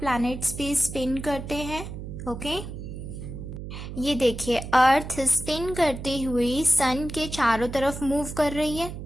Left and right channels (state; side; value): noise; right; hum, 9 dB below the sound